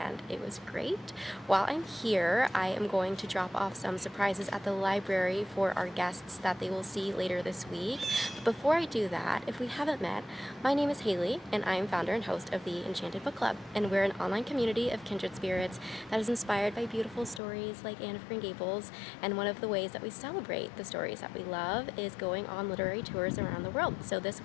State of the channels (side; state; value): right; drops out; at 17.4 s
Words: it was great. While I'm here, I am going to drop off some surprises at the library for our guests that they will see later this week. But before I do that, if we haven't met, my name is Haley and I am founder and host of the Enchanted Book Club, and we're an online community of kindred spirits that is inspired by beautiful stories like Anne of Green Gables, and one of the ways that we celebrate the stories that we love is going on literary tours around the world. So this